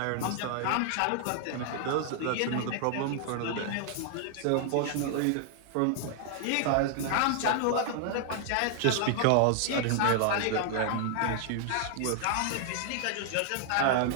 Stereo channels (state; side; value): different; both; correlation 0.00